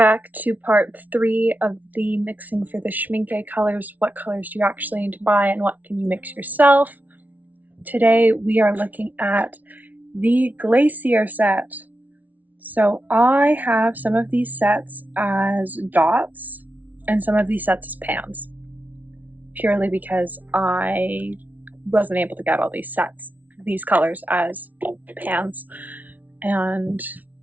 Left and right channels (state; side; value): late; left; 0.076 ms